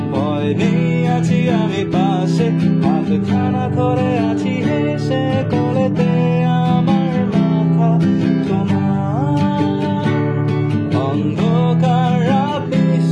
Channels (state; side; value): identical; both; correlation 1.00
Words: ভয় নেই, আছি আমি পাশে, হাতখানা ধরে আছি হেসে, কোলেতে আমার মাথা তোমার। অন্ধকার রাত